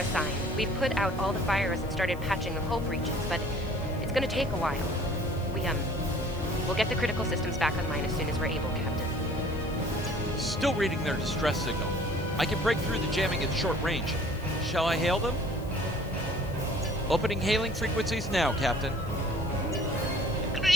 We've put out all the fires and started patching the hull breaches, but it's gonna take a while. We'll get the critical systems back online as soon as we're able, Captain. Still reading their distress signal. I can break through the jamming at short range. Shall I hail them? Opening hailing frequencies now, Captain.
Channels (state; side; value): noise; left; hiss, 23 dB below the sound